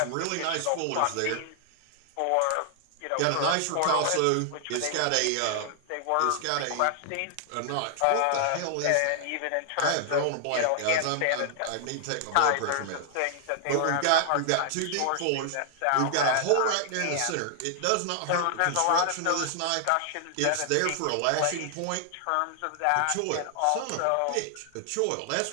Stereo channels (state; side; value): different; both; correlation 0.00